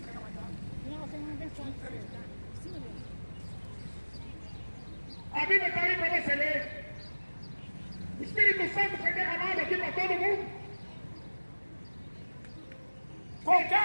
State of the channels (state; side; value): inverted; both; correlation -1.00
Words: A Bíblia está aí para você ler. O Espírito Santo foi derramado aqui para todo mundo.